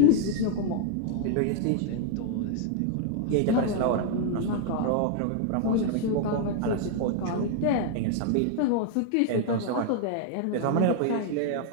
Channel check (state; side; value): different; both; correlation 0.00